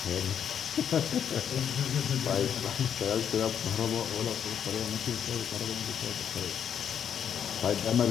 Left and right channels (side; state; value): right; quieter; 8.5 dB